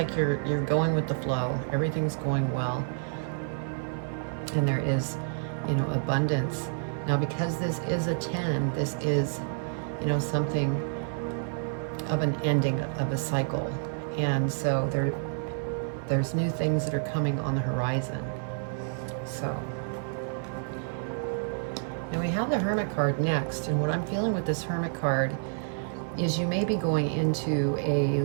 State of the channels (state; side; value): silent; left; 58 dB below the other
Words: you're going with the flow. Everything's going well. And there is, abundance. Now, because this is a 10, this is, something of an ending of a cycle. And so there's new things that are coming on the horizon. So, and we have the Hermit card next. And what I'm feeling with this Hermit card is you may be going into